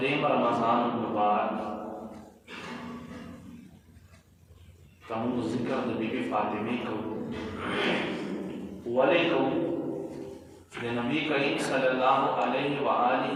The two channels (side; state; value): both; identical; correlation 1.00